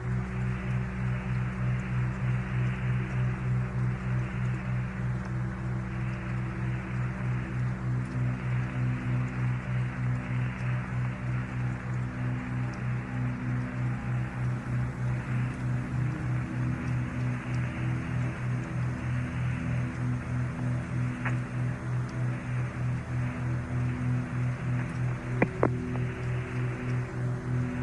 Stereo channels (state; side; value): identical; both; correlation 1.00